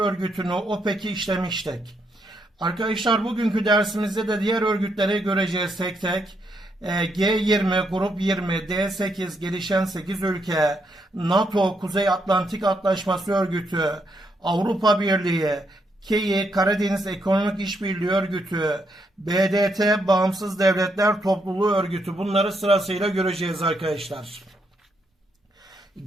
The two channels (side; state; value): both; normal; correlation 0.77